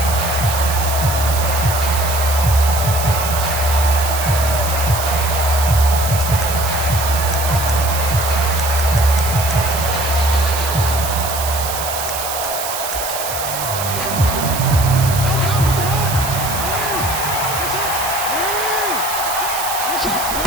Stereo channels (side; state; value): right; noise; hiss, 5 dB below the sound